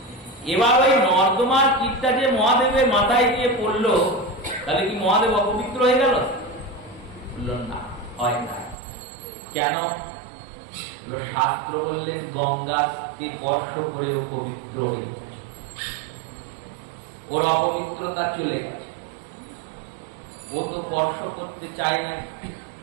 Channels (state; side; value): drops out; left; at 8.8 s